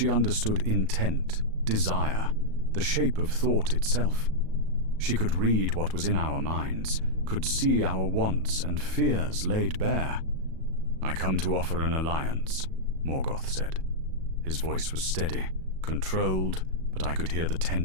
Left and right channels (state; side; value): late; left; 37 ms